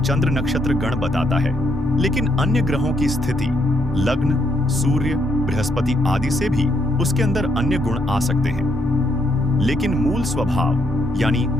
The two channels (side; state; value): both; normal; correlation 0.75